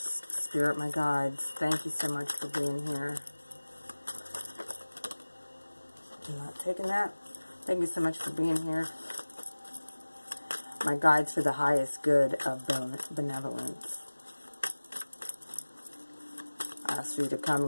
Spirit, my guides, thank you so much for being here. I'm not taking that. Thank you so much for being here. My guides for the highest good of benevolence. I ask you to come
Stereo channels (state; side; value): inverted; both; correlation -1.00